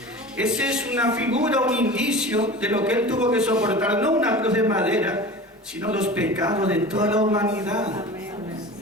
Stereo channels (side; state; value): both; normal; correlation 0.35